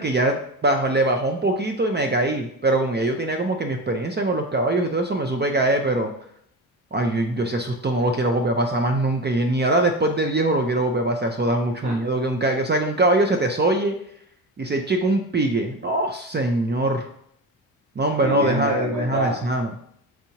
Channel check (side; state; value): both; normal; correlation 0.24